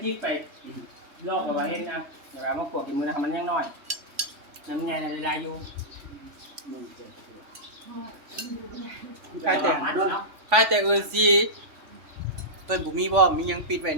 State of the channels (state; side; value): late; left; 3.5 ms